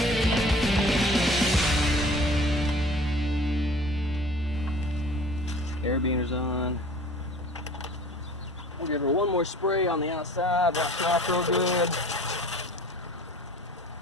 Air beaner's on. We'll give her one more spray on the outside. Wash it off real good.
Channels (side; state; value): both; normal; correlation 0.46